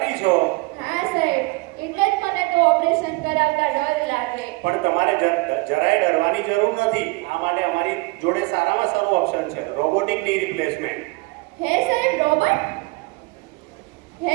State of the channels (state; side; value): quieter; left; 26.2 dB